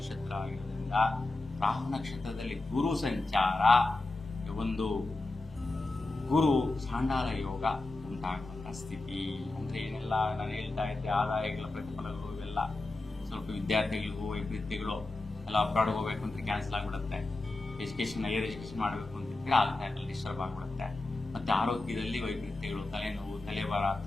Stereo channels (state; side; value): quieter; right; 3.0 dB